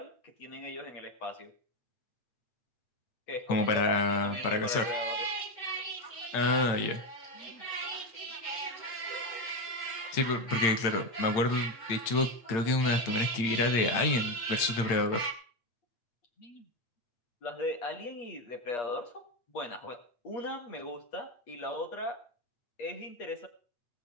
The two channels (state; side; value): late; right; 8.8 ms